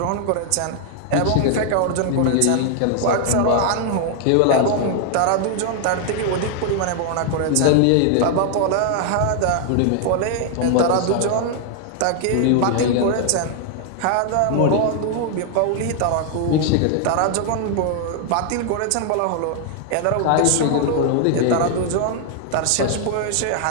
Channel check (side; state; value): both; different; correlation 0.00